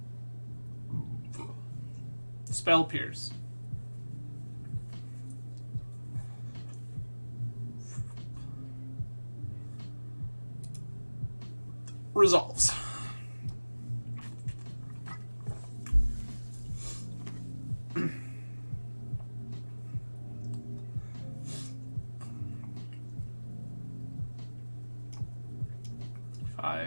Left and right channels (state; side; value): inverted; both; correlation -1.00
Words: Spell Pierce. Resolves.